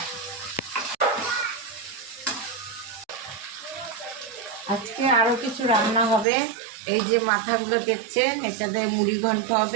আজকে আরও কিছু রান্না হবে। এই যে মাথাগুলো দেখছেন, এটাতে মুড়ি ঘন্ট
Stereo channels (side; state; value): left; drops out; at 6.2 s